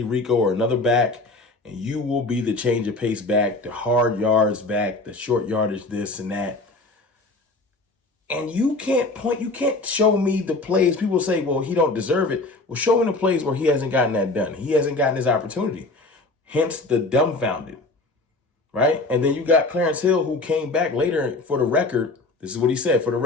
Rico or another back, and you will be the change of pace back, the hard yards back, the short yardage this and that. And you can't show me the plays. People say, well, he don't deserve it. Well, show me the plays where he hasn't gotten that done. He hasn't gotten his opportunity. Hence the dumbfounded, right? And then you got Clarence Hill, who came back later for the record. This is what he said, for the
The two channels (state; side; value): quieter; right; 3.1 dB